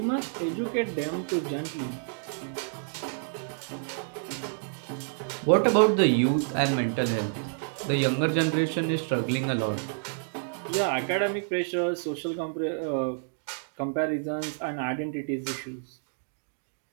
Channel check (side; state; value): left; silent; digital silence